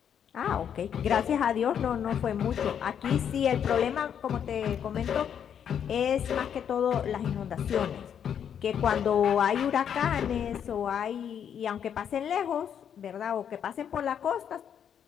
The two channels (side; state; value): right; quieter; 8.5 dB